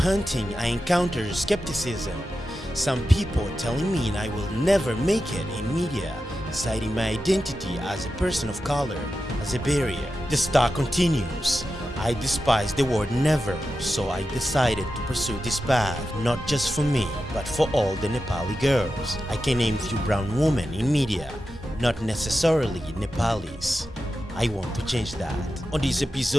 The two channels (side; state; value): both; normal; correlation 0.91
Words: I encountered skepticism. Some people telling me I will never make it in media, citing my identity as a person of color as a barrier. The star continues. I despise the word never, so I decided to pursue this path, not just for me, but for all the Nepali girls. I can name few brown women in media, not necessarily Nepalis. I want to change that. On this